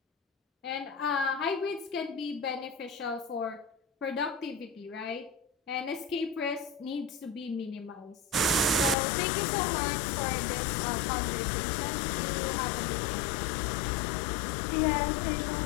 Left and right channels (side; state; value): right; drops out; at 9.0 s